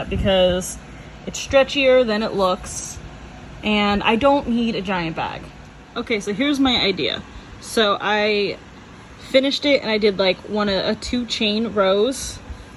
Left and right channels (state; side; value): identical; both; correlation 1.00